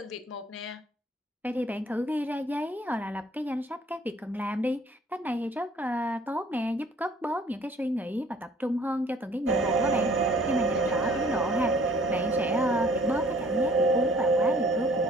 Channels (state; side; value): normal; both; correlation 0.56